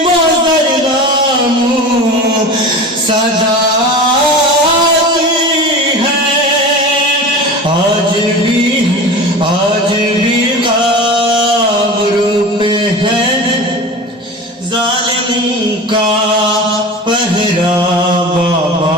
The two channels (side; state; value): both; normal; correlation 0.33